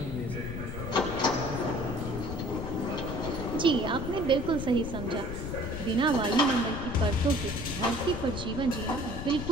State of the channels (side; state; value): left; noise; rumble, 6 dB below the sound